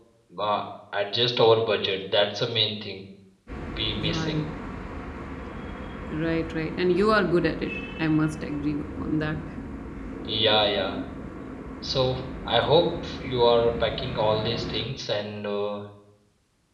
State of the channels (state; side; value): identical; both; correlation 1.00